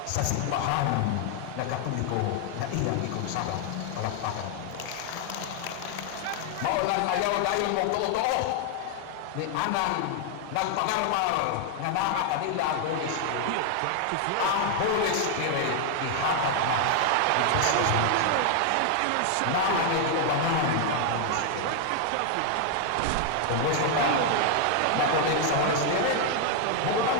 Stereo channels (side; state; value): both; different; correlation 0.00